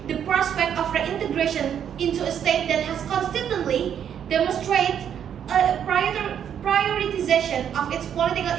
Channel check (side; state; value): left; quieter; 8.9 dB